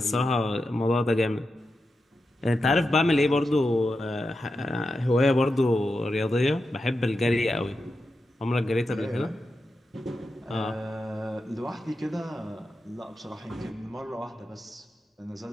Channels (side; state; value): both; normal; correlation 0.89